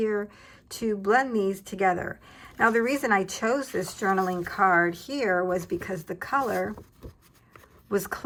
to blend these together. Now, the reason I chose this journaling card here was because the color was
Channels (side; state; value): both; identical; correlation 1.00